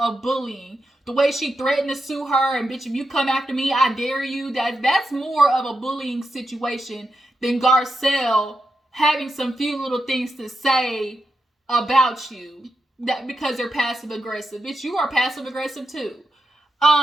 The way she threatened to sue her, and bitch, if you come after me, I dare you. That's more of a bullying situation than Garcelle having some few little things to say about you. That because they're passive aggressive. Bitch, you are passive aggressive too.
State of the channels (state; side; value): normal; both; correlation 0.87